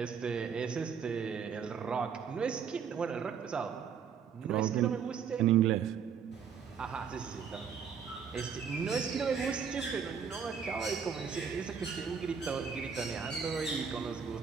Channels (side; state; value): left; quieter; 6.9 dB